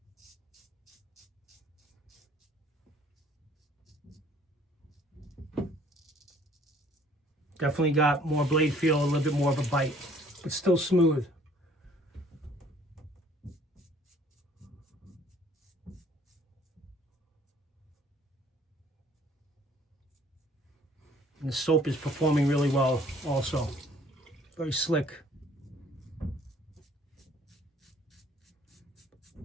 Definitely got more blade feel, a little bit more of a bite, but still smooth. And the soap is performing really well also. Very slick.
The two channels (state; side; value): normal; both; correlation 0.58